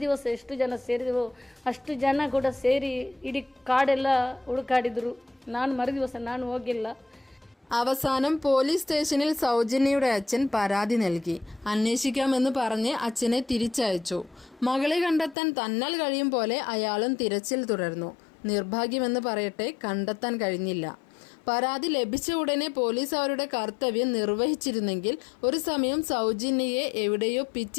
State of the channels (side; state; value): right; drops out; at 15.4 s